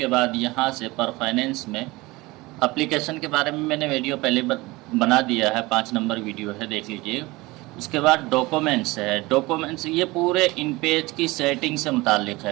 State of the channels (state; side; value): quieter; left; 21.6 dB